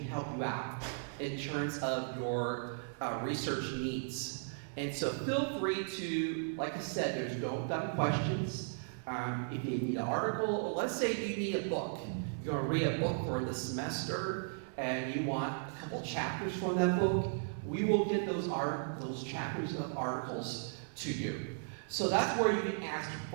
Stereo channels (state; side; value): silent; left; digital silence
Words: help you out in terms of your research needs. And so feel free to, like I said, there's no dumb questions. If you need an article, or let's say you need a book. You're going to read a book for the semester and you want a couple chapters from that book, we will get those chapters of articles to you. So that's where you can ask